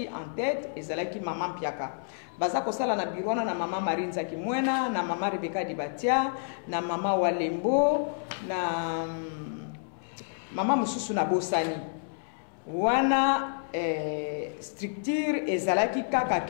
en tête ezalaki mama Mpiaka baza kosala na birwana na mama Marinza Kimwena na mama Rebecca Dibatia na mama Walembo na mama mususu na Bosani wana structure ezalaki kaka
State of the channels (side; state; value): right; silent; 58 dB below the other